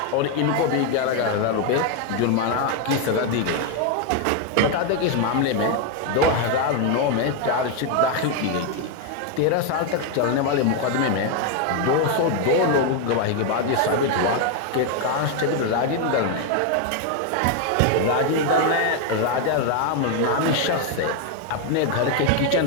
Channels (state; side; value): different; both; correlation 0.01